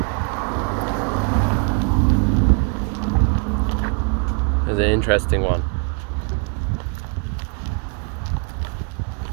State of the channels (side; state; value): left; quieter; 36.1 dB